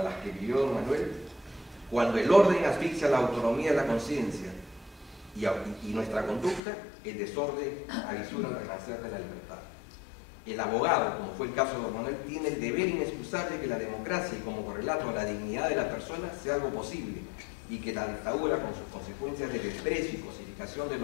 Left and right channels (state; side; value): drops out; right; at 6.6 s